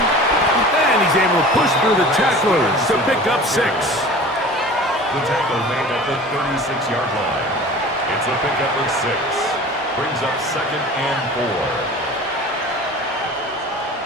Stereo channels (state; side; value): normal; both; correlation 0.40